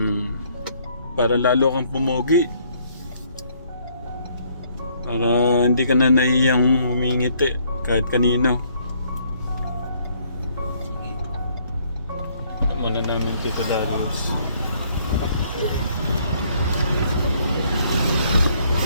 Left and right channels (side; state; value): both; inverted; correlation -0.66